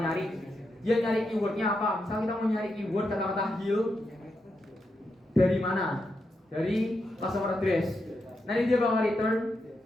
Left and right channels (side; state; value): both; normal; correlation 0.84